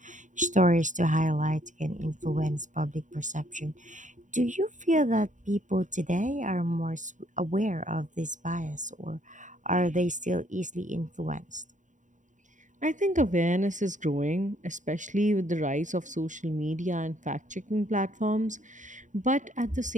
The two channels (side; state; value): left; late; 0.36 ms